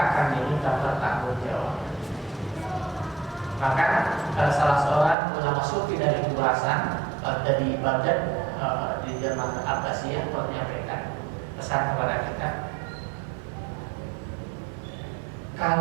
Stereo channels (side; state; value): left; drops out; at 5.2 s